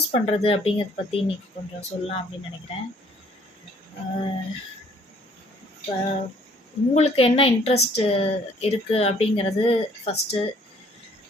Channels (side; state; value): both; normal; correlation 0.60